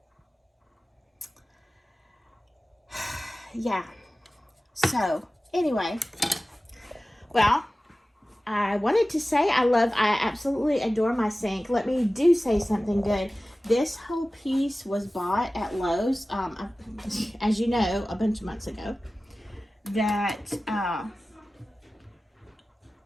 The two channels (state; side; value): normal; both; correlation 0.96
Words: Yeah. So, anyway. Well, I wanted to say I absolutely adore my sink. Let me do say something good. This whole piece was bought at Lowe's, as you know, a bunch of months ago. That